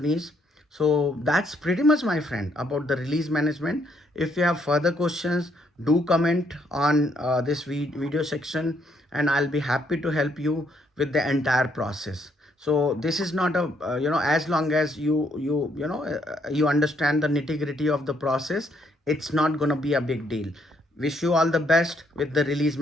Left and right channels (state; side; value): normal; both; correlation 0.72